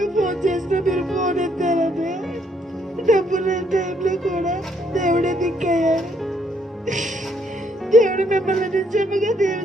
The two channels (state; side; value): normal; both; correlation 0.71